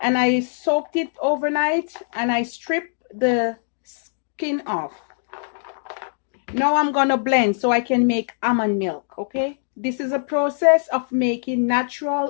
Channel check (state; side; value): silent; right; digital silence